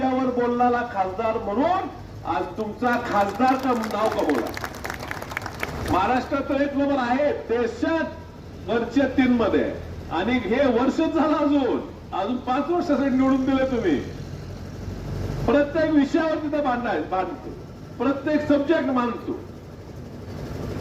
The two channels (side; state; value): both; identical; correlation 1.00